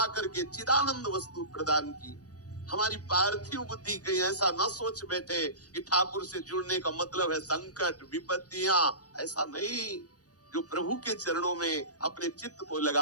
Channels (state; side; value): late; right; 0.67 ms